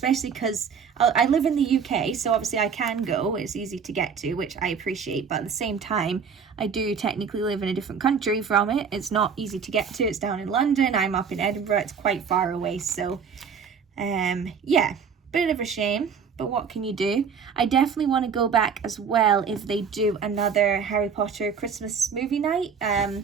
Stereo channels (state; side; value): quieter; left; 6.3 dB